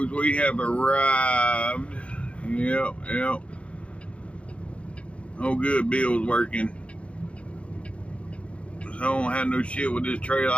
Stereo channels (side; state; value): right; late; 0.061 ms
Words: We have arrived. Yep. Oh, good. Bill's working. So I don't have no shit with this trailer.